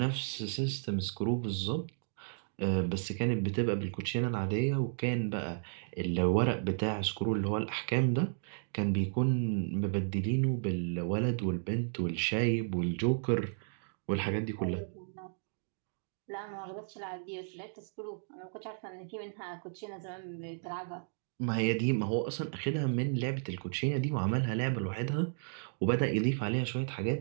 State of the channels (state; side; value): silent; left; digital silence